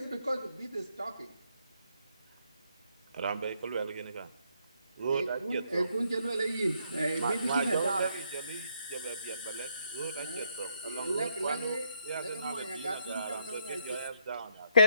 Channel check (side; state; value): both; inverted; correlation -0.74